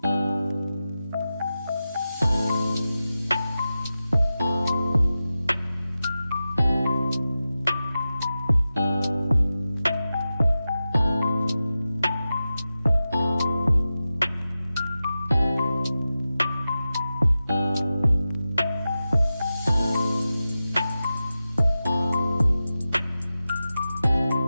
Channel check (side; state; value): both; inverted; correlation -0.93